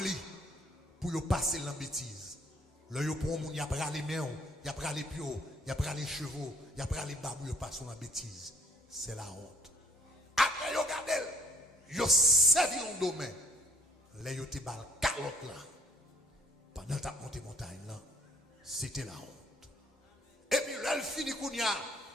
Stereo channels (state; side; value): normal; both; correlation 0.60